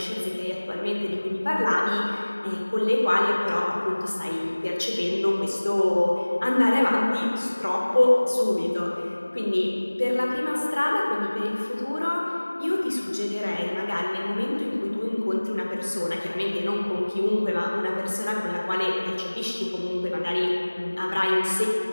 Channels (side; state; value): both; inverted; correlation -1.00